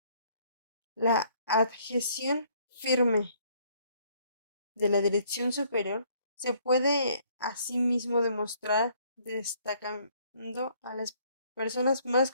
La adhesión firme de la dirección superior se puede asimismo demostrar destacando a las personas más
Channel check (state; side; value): inverted; both; correlation -0.63